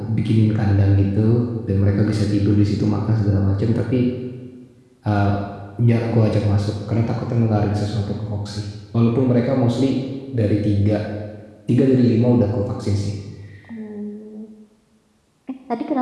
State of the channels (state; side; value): identical; both; correlation 1.00